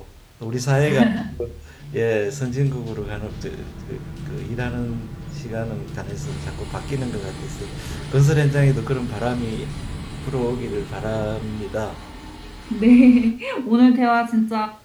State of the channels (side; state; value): both; identical; correlation 1.00